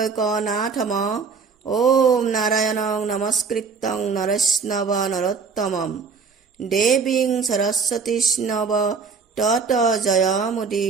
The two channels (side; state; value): left; quieter; 5.3 dB